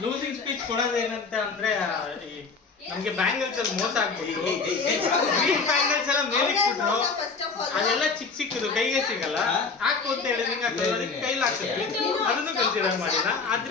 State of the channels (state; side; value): quieter; right; 4.6 dB